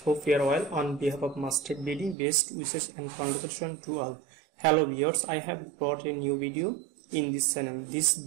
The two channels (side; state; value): left; drops out; at 2.1 s